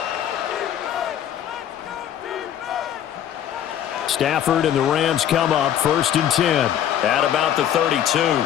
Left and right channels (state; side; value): quieter; right; 10.3 dB